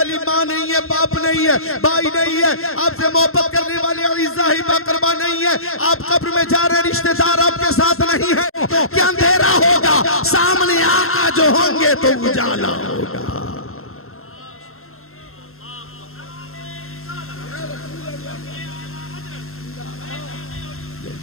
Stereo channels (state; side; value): late; right; 0.62 ms